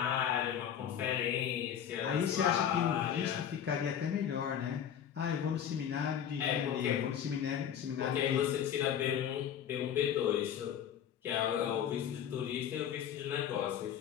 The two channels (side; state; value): right; quieter; 9.1 dB